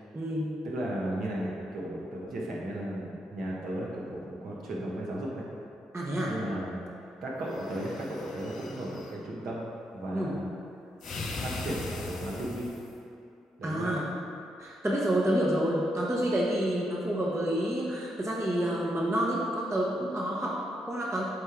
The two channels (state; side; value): normal; both; correlation 0.81